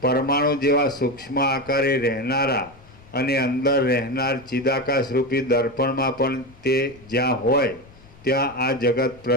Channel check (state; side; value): noise; left; rumble, 24 dB below the sound